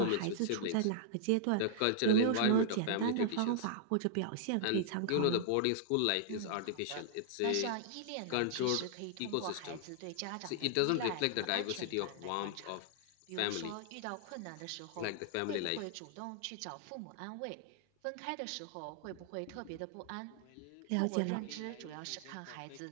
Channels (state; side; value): different; both; correlation -0.01